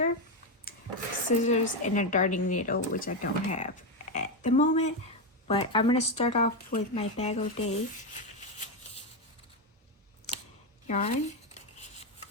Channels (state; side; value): normal; both; correlation 0.08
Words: scissors, and a darning needle, which I don't have at the moment. But I'm gonna start off with my Bag O' Day yarn